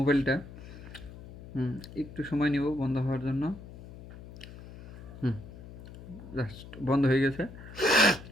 একটু সময় নিব বন্ধ হওয়ার জন্য। জাস্ট বন্ধ হয়ে গেছে।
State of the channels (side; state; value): left; noise; hum, 15 dB below the sound